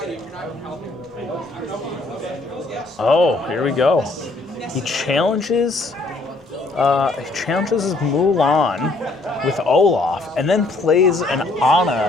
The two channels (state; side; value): quieter; right; 3.1 dB